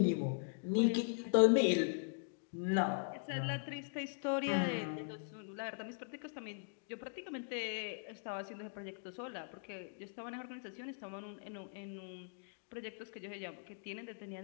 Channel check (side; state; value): right; silent; digital silence